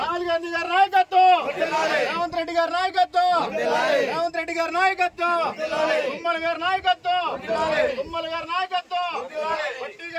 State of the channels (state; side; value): identical; both; correlation 1.00